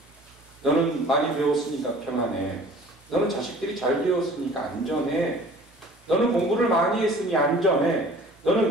너는 많이 배웠으니까 평안해. 너는 자식들이 잘 배웠으니까 안전해. 너는 공부를 많이 했으니 안전해.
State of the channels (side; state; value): both; normal; correlation 0.48